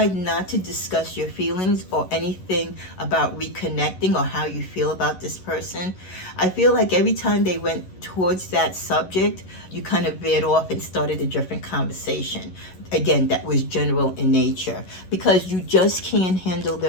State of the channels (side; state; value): right; late; 11 ms